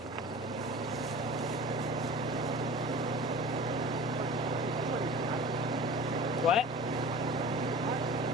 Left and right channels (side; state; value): both; normal; correlation 0.38